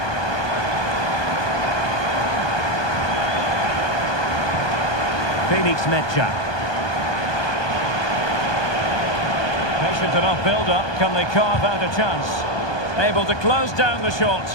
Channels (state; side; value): late; right; 1.2 ms